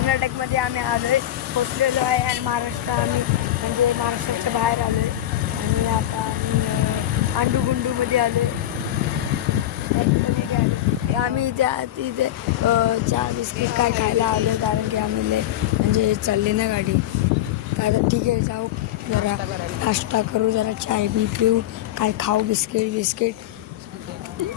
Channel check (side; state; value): right; quieter; 12.8 dB